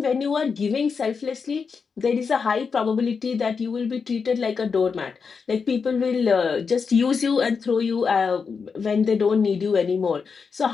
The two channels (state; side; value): quieter; right; 5.5 dB